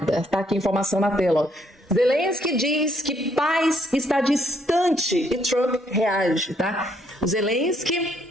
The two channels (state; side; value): normal; both; correlation 0.70